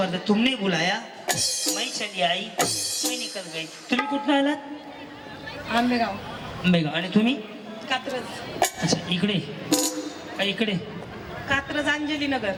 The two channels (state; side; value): identical; both; correlation 1.00